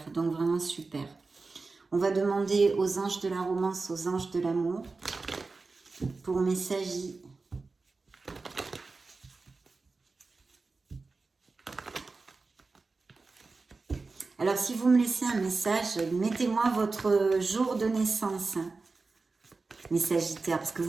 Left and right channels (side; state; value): left; quieter; 3.9 dB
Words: Donc vraiment super. On va demander aux anges de la romance, aux anges de l'amour, pour mes Sagis. Alors, si vous me laissez un message, mettez-moi votre jour de naissance, hein, mes Sagittaires, parce que